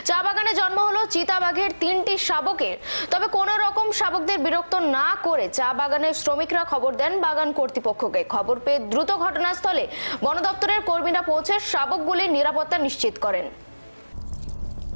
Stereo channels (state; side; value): inverted; both; correlation -1.00